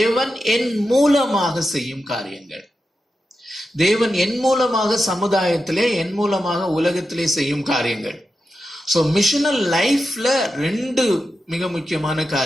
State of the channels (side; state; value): both; normal; correlation 0.90